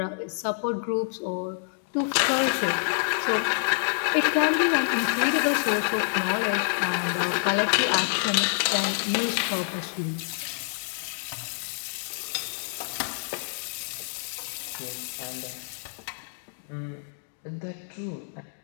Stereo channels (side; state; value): right; silent; digital silence